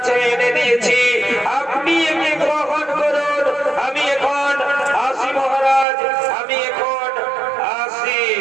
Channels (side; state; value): left; drops out; at 5.9 s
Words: এনে দিয়েছি, আপনি একে গ্রহণ করুন। আমি এখন আসি মহারাজ, আমি এখন আসি।